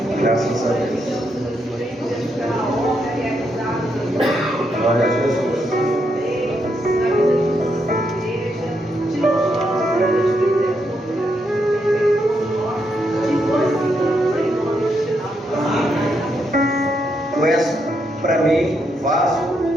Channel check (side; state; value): both; normal; correlation 0.79